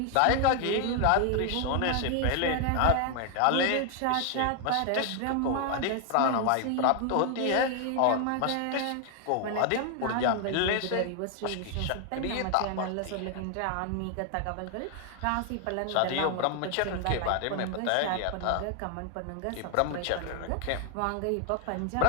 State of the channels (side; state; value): both; different; correlation 0.00